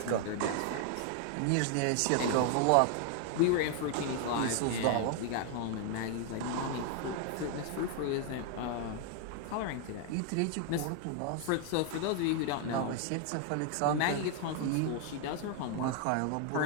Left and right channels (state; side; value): different; both; correlation 0.00